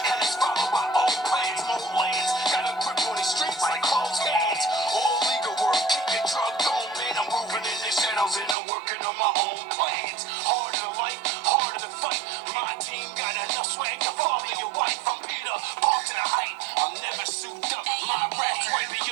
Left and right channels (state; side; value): drops out; left; at 8.6 s